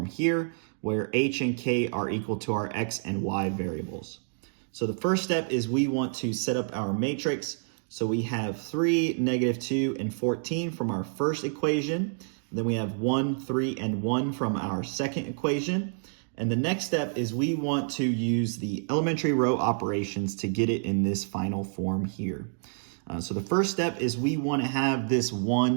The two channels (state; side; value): silent; left; digital silence